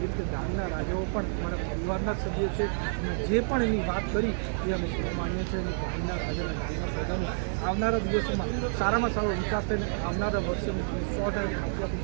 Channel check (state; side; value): silent; left; digital silence